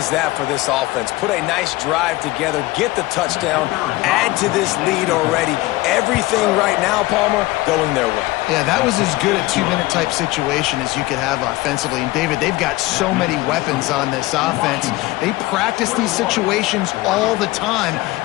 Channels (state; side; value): quieter; right; 19.5 dB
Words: that for this offense? Put a nice drive together, get the touchdown, add to this lead already. Everything right now, Palmer, going their way. Yeah, that was as good a two-minute type situation as you could have offensively. And, David, they've got so many weapons on this offense. They practice these situations all the time,